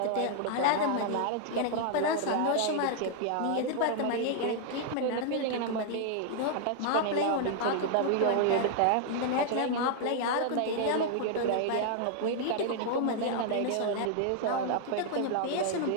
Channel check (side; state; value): both; different; correlation 0.00